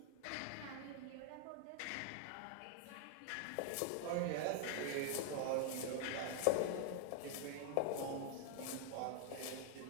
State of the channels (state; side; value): different; both; correlation 0.00